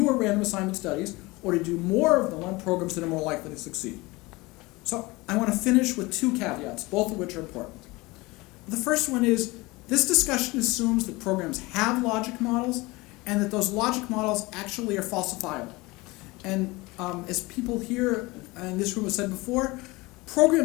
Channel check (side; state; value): right; quieter; 22.6 dB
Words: random assignment studies or to do more of them on programs that are more likely to succeed. So I want to finish with two caveats, both of which are important. The first one is this discussion assumes that programs have logic models and that those logic models actually are falsifiable. And as people here in this room have said before,